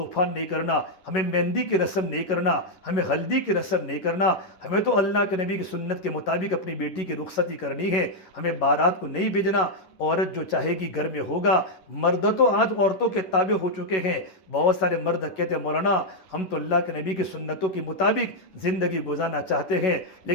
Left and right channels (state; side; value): late; right; 11 ms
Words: نہیں کرنا، ہمیں مہندی کی رسم نہیں کرنا، ہمیں ہلدی کی رسم نہیں کرنا، ہمیں تو اللہ کے نبی کی سنت کے مطابق اپنی بیٹی کی رخصتی کرنی ہے، ہمیں بارات کو نہیں بھیجنا، عورت جو چاہے گی گھر میں ہوگا۔ مرد تو آج عورتوں کے تابع ہو چکے ہیں، بہت سارے مرد کہتے ہیں مولانا ہم تو اللہ کے نبی کی سنتوں کے مطابق زندگی گزارنا چاہتے ہیں،